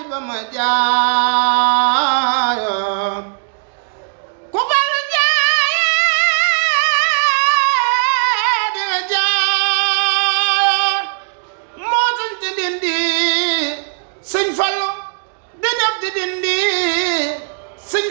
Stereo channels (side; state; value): left; silent; digital silence